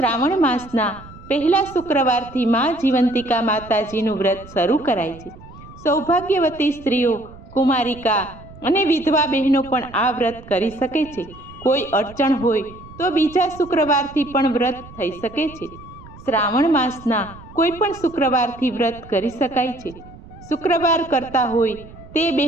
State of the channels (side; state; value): right; noise; rumble, 19 dB below the sound